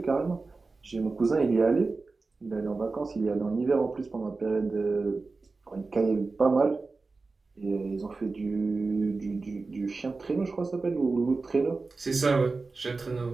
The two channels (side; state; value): left; quieter; 3.9 dB